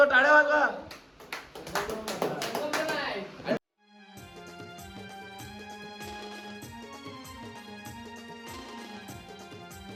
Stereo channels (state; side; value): identical; both; correlation 1.00